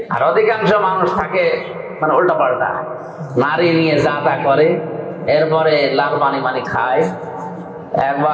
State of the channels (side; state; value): both; identical; correlation 1.00